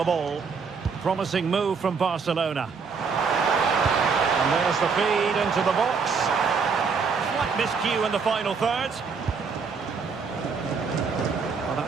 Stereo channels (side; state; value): left; quieter; 5.4 dB